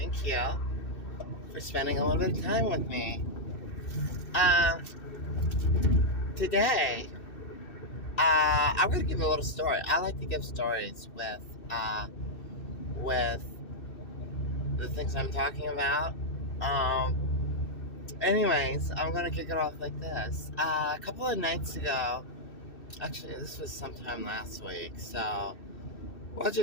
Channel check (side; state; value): right; late; 2.6 ms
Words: you for spending a little bit of time with me. Um, Today, I'm going to give a little story. I like to give stories with the things I'm talking about. Anyways, I'm going to kick it off like this. A couple of nights ago, actually, this was sometime last week, so we'll